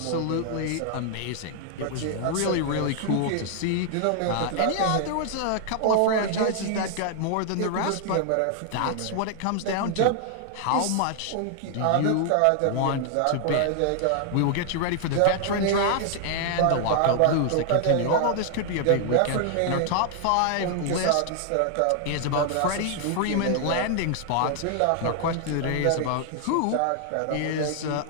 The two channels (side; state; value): both; different; correlation 0.00